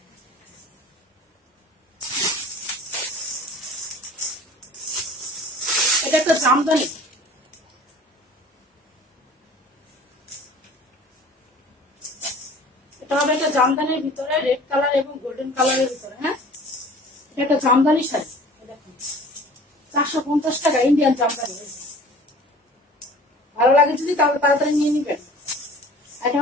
এটা একটা জামদানি, এটা হবে একটা জামদানির ভিতরে রেড কালার এবং গোল্ডেন কালারের ভিতরে। হ্যাঁ, এটা একটা জামদানি শাড়ি। দেখুন, 450 টাকা, ইন্ডিয়ান জামদানি। ভালো লাগে যদি তাহলে তাড়াতাড়ি নিয়ে নিবেন। এটা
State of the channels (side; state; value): both; normal; correlation 0.46